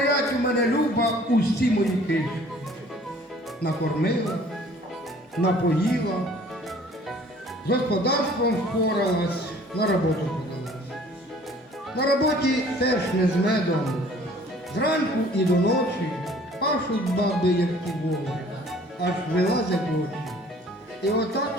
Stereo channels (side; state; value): both; normal; correlation 0.53